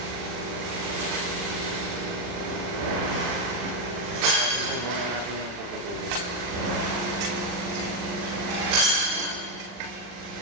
Natin po muna natin yung puputulin.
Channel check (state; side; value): late; left; 40 ms